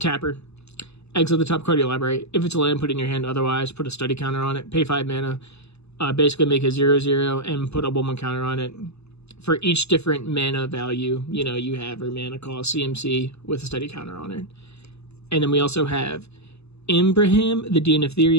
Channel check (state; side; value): late; right; 0.80 ms